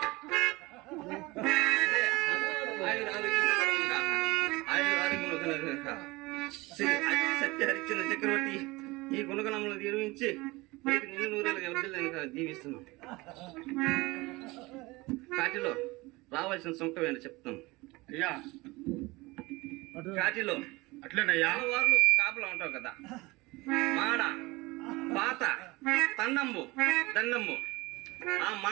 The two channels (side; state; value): left; quieter; 22.3 dB